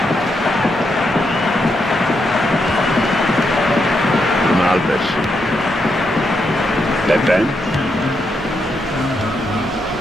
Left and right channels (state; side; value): normal; both; correlation 0.81